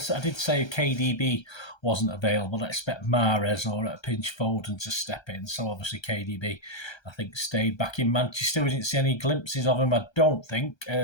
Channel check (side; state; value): right; late; 1.3 ms